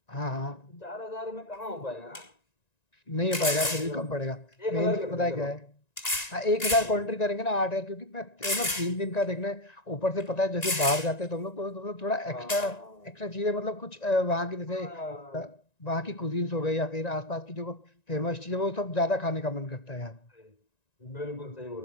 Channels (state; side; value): late; right; 1.9 ms